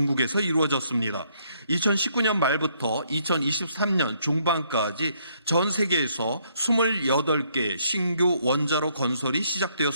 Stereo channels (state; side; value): inverted; both; correlation -0.70